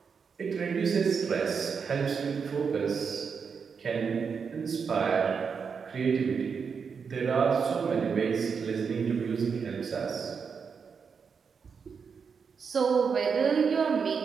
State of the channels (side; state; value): left; quieter; 6.0 dB